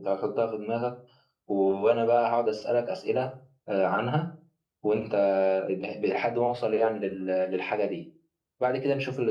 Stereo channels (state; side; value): identical; both; correlation 1.00